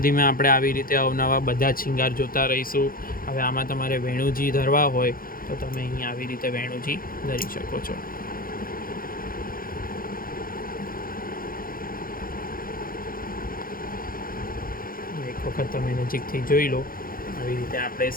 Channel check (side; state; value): right; late; 0.42 ms